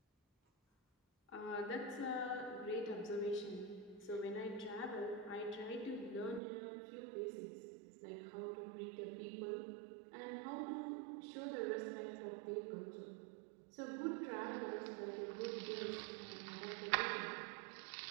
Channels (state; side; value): drops out; left; at 6.4 s